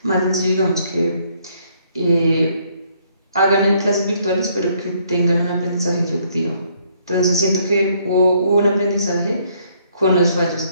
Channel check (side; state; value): both; inverted; correlation -0.67